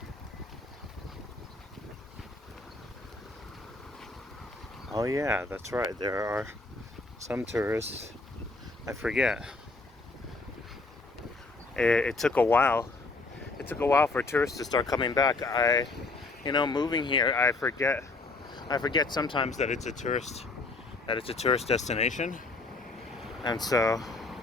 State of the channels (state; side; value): quieter; right; 3.4 dB